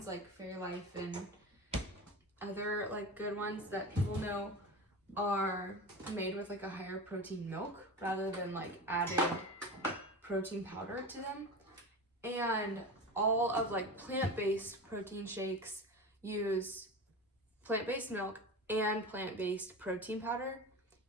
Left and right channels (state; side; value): normal; both; correlation 0.28